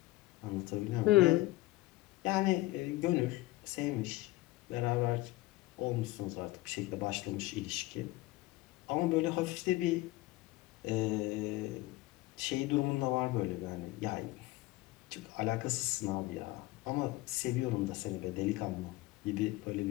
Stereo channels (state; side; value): quieter; right; 18.8 dB